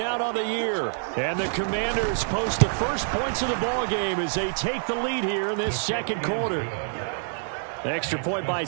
on the year. And the Commanders post the first points of the ball game as they take the lead here in this 2nd quarter. The extra point by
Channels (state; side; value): silent; left; 61 dB below the other